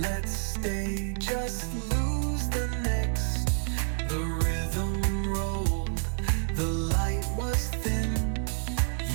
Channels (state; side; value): silent; left; 59 dB below the other